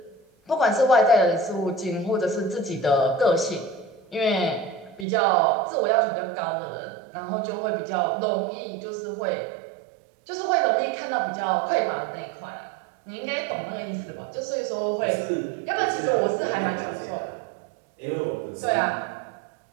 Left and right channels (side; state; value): left; drops out; at 5.1 s